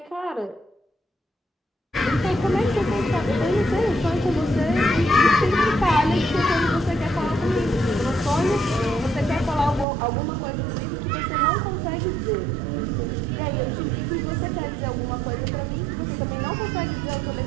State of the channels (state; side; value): drops out; left; at 9.9 s